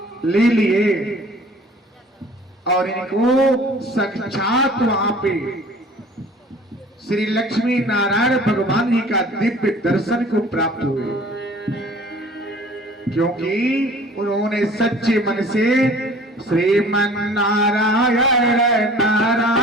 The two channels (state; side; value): normal; both; correlation 0.48